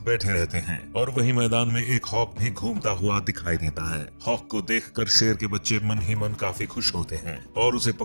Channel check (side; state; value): both; inverted; correlation -1.00